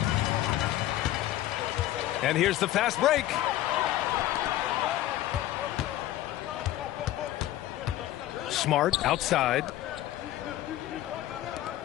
And here's the fast break. Smart outside.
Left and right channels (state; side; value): quieter; right; 14.3 dB